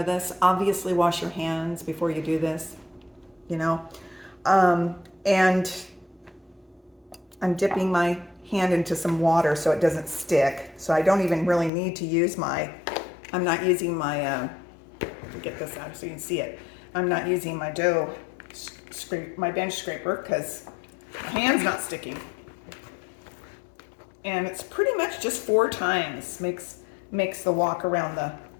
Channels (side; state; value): right; drops out; at 11.7 s